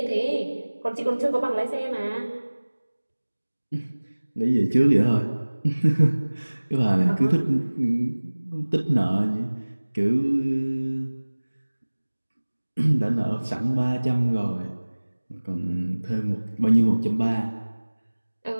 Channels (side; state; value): both; inverted; correlation -1.00